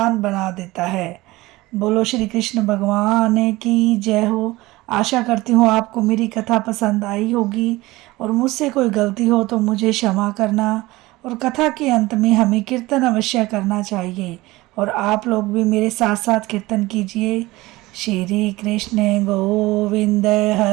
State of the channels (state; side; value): quieter; left; 19.8 dB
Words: बना देता है। बोलो श्री कृष्ण भगवान की जय हो। आशा करती हूँ आपको मेरी कथा पसंद आई होगी और मुझसे कोई गलती हो तो मुझे क्षमा करना। और कथा के अंत में हमें कीर्तन अवश्य करना चाहिए और आप लोग भी मेरे साथ साथ कीर्तन कीजिए। श्री कृष्ण गोविंद